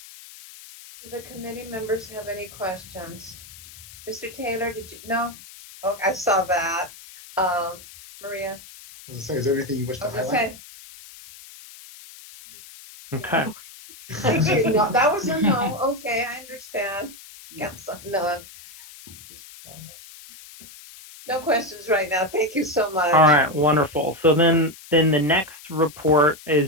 Do the committee members have any questions? Mr. Taylor, did you? No? Oh, I saw that. Maria? I was gonna say, is there anything you wish to highlight? Say. Okay. Thank you. No, that was a no. Okay, I understand. Council, none. No questions right now. Thank you so much. All right, wonderful. So then the next report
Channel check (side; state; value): left; noise; hiss, 18 dB below the sound